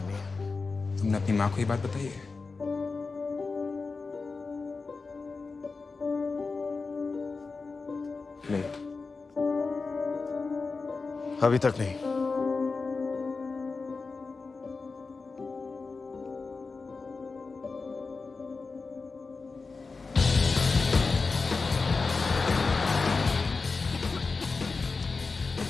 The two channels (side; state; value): right; quieter; 4.2 dB